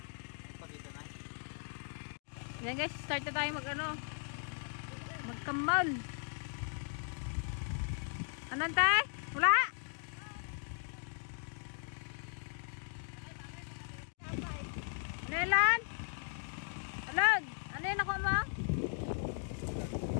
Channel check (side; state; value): right; silent; 53 dB below the other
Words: Pagkita na. Yan guys, start na tayo magkamal. Anong tay? Wala? Nelan? Alag? Ano yun ako mo?